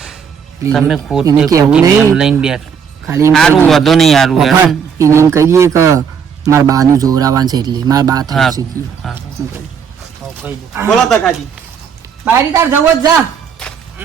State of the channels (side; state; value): left; quieter; 6.9 dB